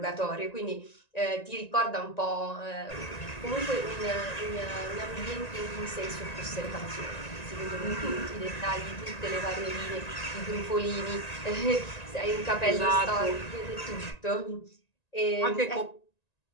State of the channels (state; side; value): late; right; 1.9 ms